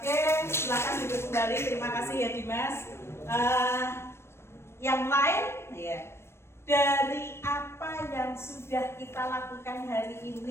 silakan duduk kembali. Terima kasih ya Dimas. Yang lain, ya. Dari apa yang sudah kita lakukan hari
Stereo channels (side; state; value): right; late; 0.12 ms